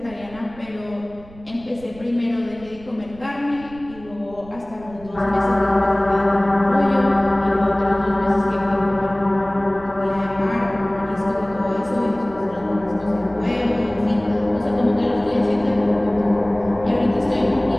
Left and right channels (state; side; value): noise; right; rumble, 21 dB below the sound